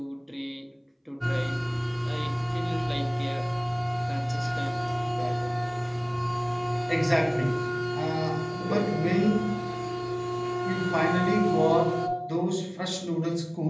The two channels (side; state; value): both; identical; correlation 1.00